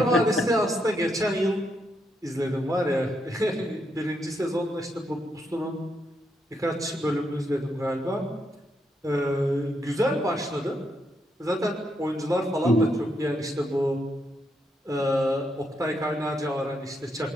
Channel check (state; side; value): normal; both; correlation 0.79